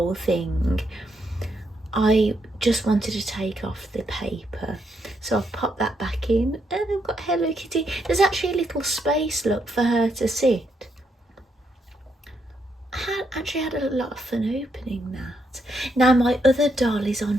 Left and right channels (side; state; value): both; normal; correlation 0.78